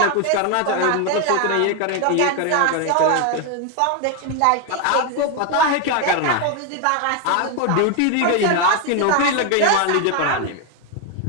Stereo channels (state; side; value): different; both; correlation 0.01